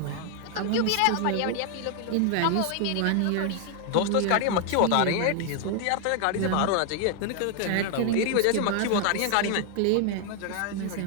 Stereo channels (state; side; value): different; both; correlation 0.00